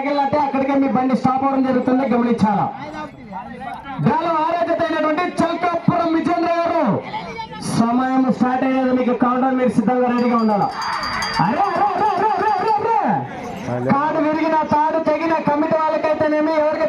అక్కడికే మీ బండి స్టాప్ అవడం జరుగుతుంది, గమనించాలా. డ్రాలో 6వ జత అయినటువంటి చల్కాపురం విజేంద్ర గారు సమయం స్టార్ట్ అయ్యేది. మీకు కౌంటర్ మీరు సిద్ధంగా రెడీగా ఉండాలా. తాడు విరిగిన తాడు తెగిన కమిటీ వాళ్ళకైతేనేమి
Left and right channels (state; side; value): identical; both; correlation 1.00